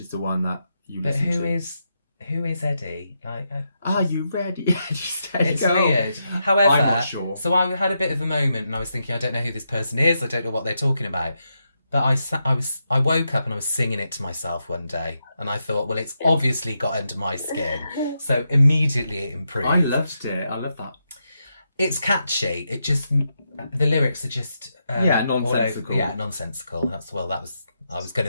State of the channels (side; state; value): both; inverted; correlation -0.84